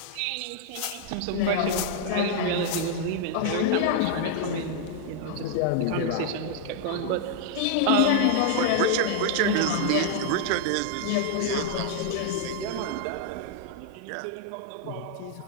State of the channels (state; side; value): different; both; correlation -0.01